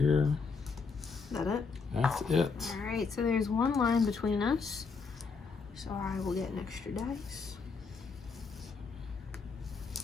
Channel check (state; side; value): quieter; right; 4.9 dB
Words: Is that it? That's it. All right, so there's 1 line between us. So I will get an extra dice.